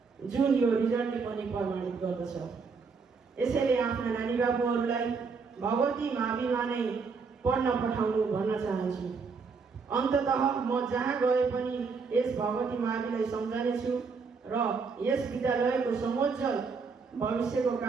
जुन यो रिजल्टले पनि प्रमाणित गर्दछ। यसैले आफ्ना नानी बाबुहरूलाई भगवती माविमा नै पढ्न पठाउनु भन्न चाहन्छु। अन्ततः म जहाँ गए पनि यस भगवती माविलाई सम्झनेछु र यस विद्यालयको समोज्जवल भविष्यको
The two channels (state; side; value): quieter; left; 5.0 dB